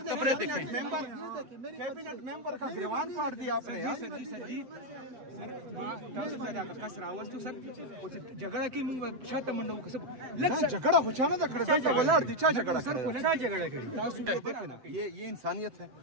کپڑے دیکھیں کیبنٹ ممبر کا گریوان پاٹ دیا آپ نے. جھگڑا کی جھگڑا ہوچانا تھا کڑتا ولاڑ دی چا جھگڑا یہ انسانیت ہے.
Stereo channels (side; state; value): left; late; 7.9 ms